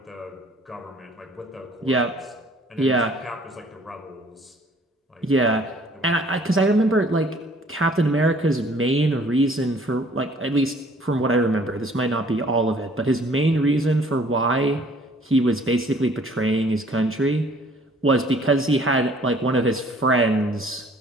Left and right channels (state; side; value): normal; both; correlation 0.56